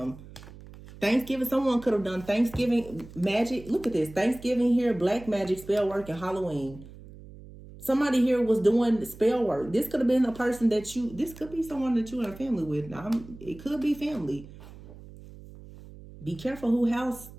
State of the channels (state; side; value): noise; right; hum, 18 dB below the sound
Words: Thanksgiving, someone could have done Thanksgiving magic. Look at this. Thanksgiving here, black magic, spell work, and Halloween. Somebody here was doing spell work. This could have been a person this could be someone that you're in a family with. Now, it could be family. Be careful who house